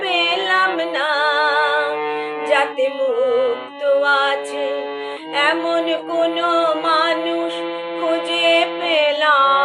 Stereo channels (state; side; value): identical; both; correlation 1.00